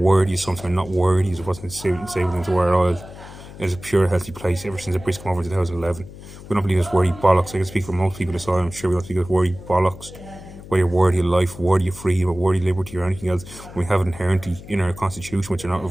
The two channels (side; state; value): left; noise; hum, 16 dB below the sound